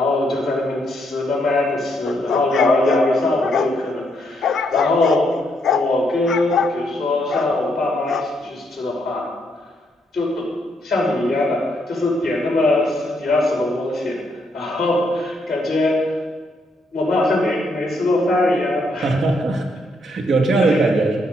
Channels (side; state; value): both; normal; correlation 0.75